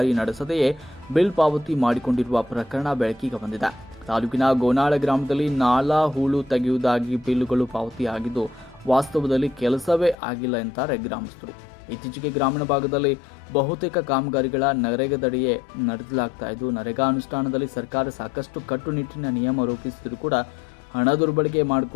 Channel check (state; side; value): drops out; right; at 10.2 s